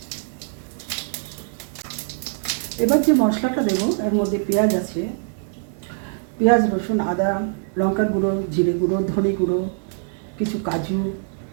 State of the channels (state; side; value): silent; left; digital silence